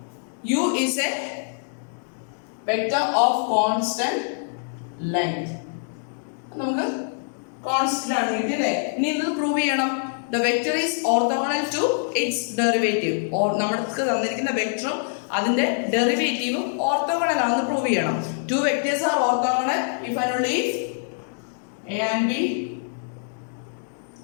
u is a vector of constant length. നമുക്ക് constant ആണ് കിട്ടിയല്ലേ. ഇനി ഇത് prove ചെയ്യണം. The vector is orthogonal to its derivative. or നമ്മൾക്ക് തന്നിരിക്കുന്ന വെക്ടറും അതിന്റെ ഡെറിവേറ്റീവും ഓർത്തോഗണൽ ആണെന്ന് പ്രൂവ് ചെയ്യണം. Two vectors are orthogonal if and only if A and B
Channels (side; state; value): right; silent; digital silence